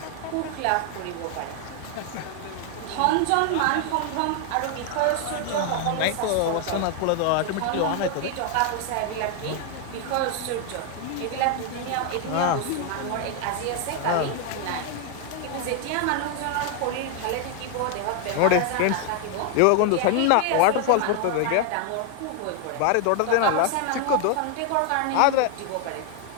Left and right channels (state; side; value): different; both; correlation 0.00